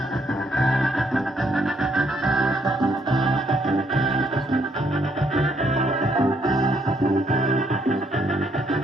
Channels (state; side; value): normal; both; correlation 0.71